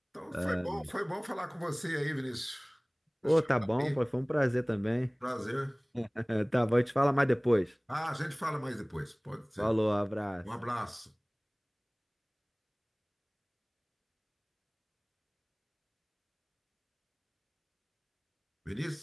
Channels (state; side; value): identical; both; correlation 1.00